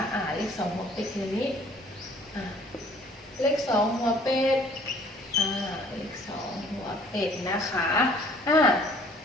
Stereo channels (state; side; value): normal; both; correlation 0.56